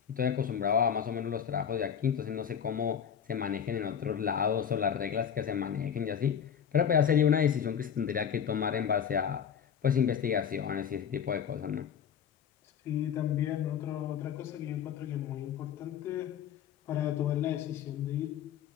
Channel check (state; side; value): quieter; right; 8.1 dB